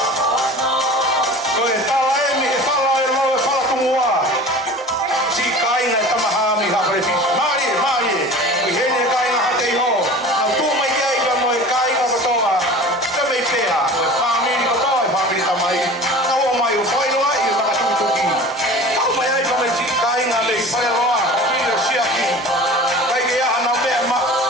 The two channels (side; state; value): both; normal; correlation 0.39